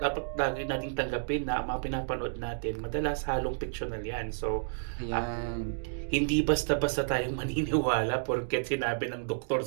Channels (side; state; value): left; silent; digital silence